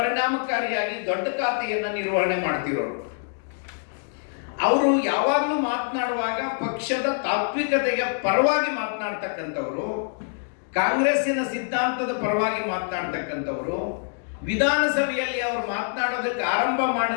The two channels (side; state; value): right; silent; digital silence